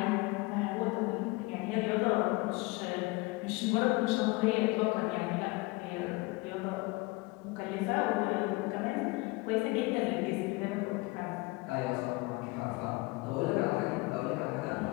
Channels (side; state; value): right; quieter; 24.4 dB